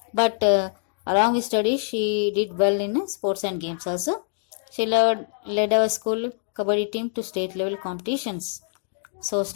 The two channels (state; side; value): silent; right; digital silence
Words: But along with studies, she did well in sports and games also. She led our school kabaddi team to state level competitions. So